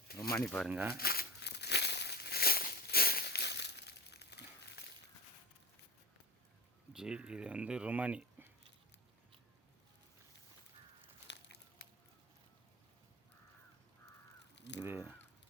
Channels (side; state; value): both; normal; correlation 0.29